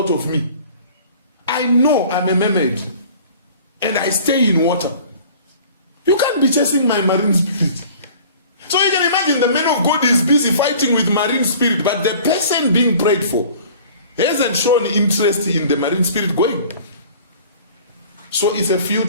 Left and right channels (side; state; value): both; inverted; correlation -0.47